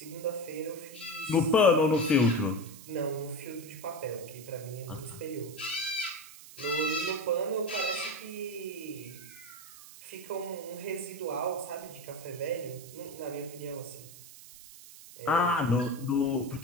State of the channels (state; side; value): noise; right; hiss, 17 dB below the sound